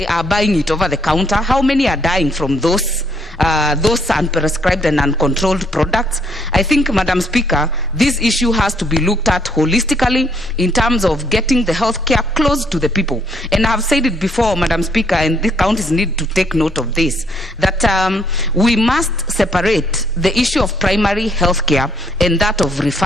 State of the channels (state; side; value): normal; both; correlation 0.69